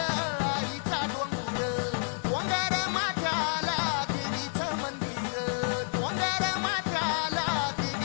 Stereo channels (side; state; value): right; silent; 58 dB below the other